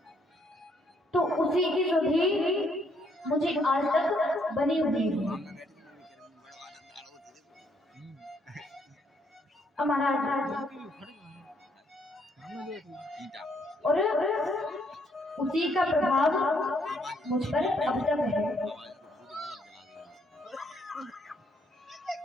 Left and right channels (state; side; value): normal; both; correlation 0.70